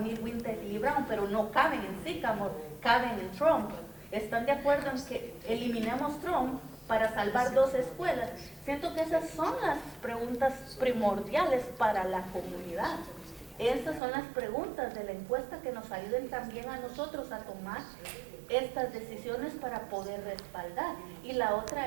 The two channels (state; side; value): drops out; left; at 14.0 s